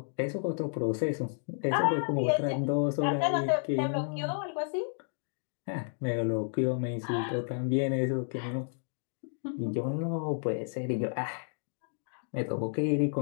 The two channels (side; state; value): right; silent; digital silence